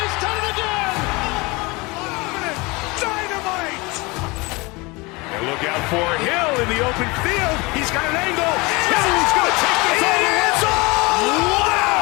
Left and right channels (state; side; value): quieter; right; 25.0 dB